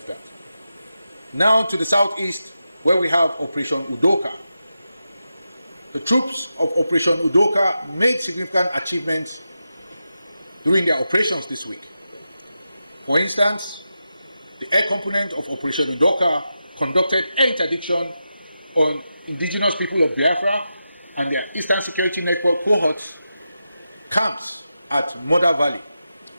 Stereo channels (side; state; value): both; inverted; correlation -0.89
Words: that. Now to the southeast, where we have Operation Udoka. The troops of Operation Udoka made significant achievements during their operations this week. For instance, the air component of Operation Udoka conducted air interdiction on indigenous people of Biafra and their Eastern Security Network cohorts camps at Mother Valley.